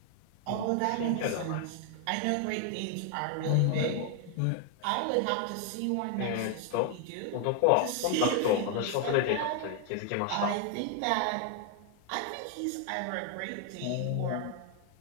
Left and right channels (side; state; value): both; different; correlation 0.00